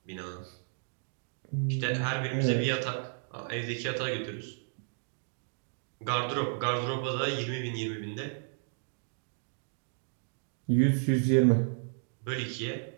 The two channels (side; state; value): left; silent; digital silence